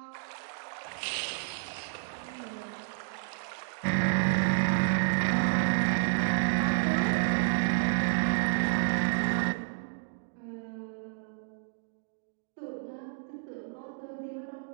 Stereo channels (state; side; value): silent; left; digital silence